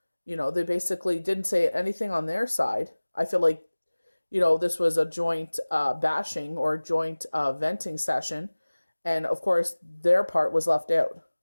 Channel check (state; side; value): inverted; both; correlation -1.00